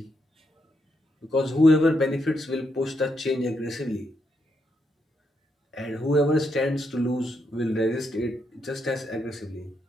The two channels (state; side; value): normal; both; correlation 0.80